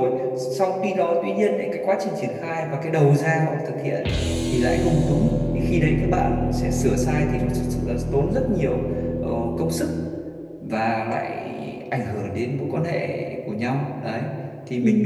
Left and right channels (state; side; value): identical; both; correlation 1.00